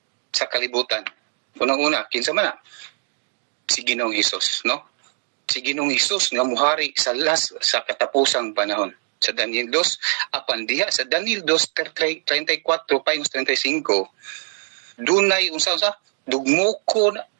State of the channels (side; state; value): left; silent; 57 dB below the other